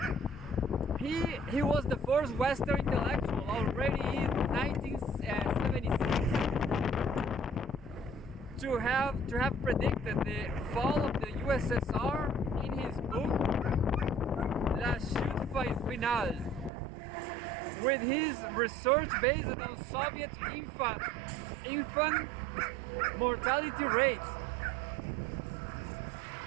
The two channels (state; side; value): drops out; left; at 16.7 s